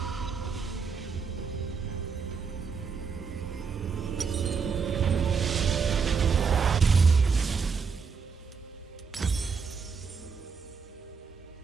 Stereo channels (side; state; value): left; quieter; 5.6 dB